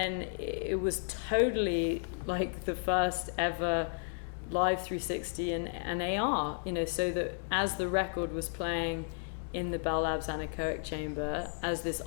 it was totally like the first ever live 360 and AR, you know, so that as the record was playing in the Bell Labs anechoic chamber as this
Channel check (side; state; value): right; silent; 56 dB below the other